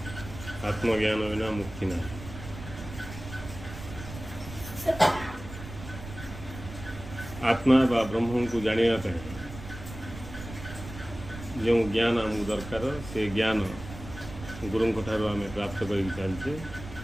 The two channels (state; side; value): noise; right; rumble, 12 dB below the sound